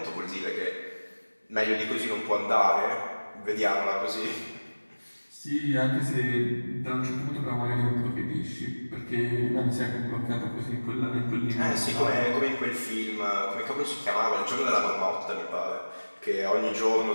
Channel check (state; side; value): inverted; both; correlation -1.00